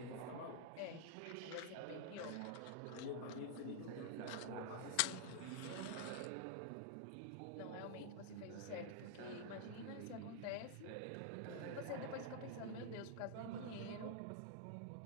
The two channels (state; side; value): different; both; correlation -0.01